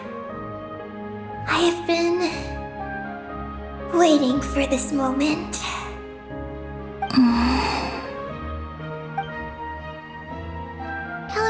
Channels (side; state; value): both; identical; correlation 1.00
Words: I have been waiting for this moment.